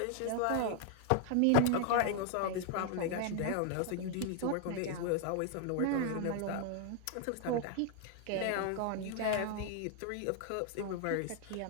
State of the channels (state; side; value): different; both; correlation 0.00